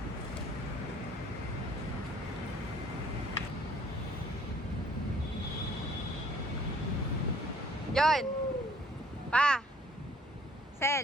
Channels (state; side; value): normal; both; correlation 0.58